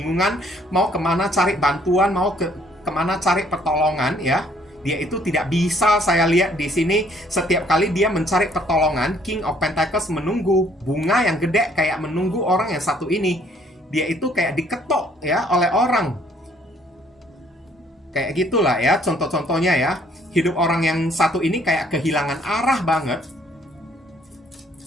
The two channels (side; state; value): both; normal; correlation 0.63